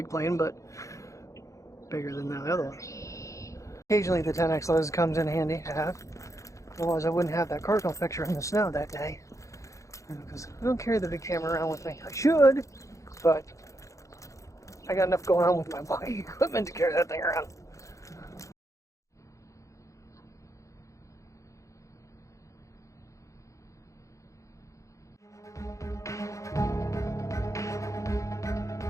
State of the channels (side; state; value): right; late; 0.15 ms